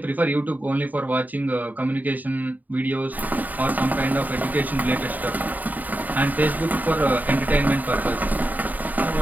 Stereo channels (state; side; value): late; left; 0.083 ms